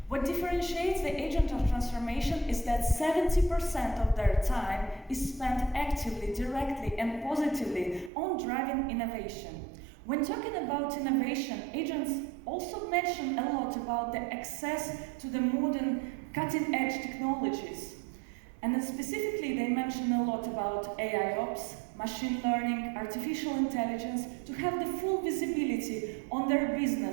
What differentiates the agent of transformation is that 70% of their time is spent actively, directly, and positively on driving innovation. When talking about innovation, agents also mention a lot about the access to the modern cutting-edge technologies. And then specifically, they mention a lot about AIOps, machine learning, artificial intelligence, to have the full visibility on their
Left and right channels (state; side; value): drops out; left; at 8.1 s